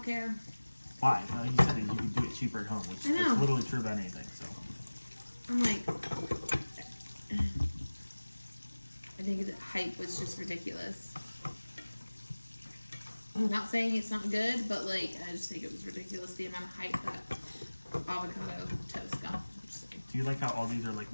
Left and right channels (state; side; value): inverted; both; correlation -1.00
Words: care. Why? You said that you could do it cheaper at home, which is literally true about anything. So I'm like, I think the hype was just ridiculous. I'm not saying it's not good, but like, I just think it was ridiculous the amount of hype that avocado toast got. Do you like how all these are like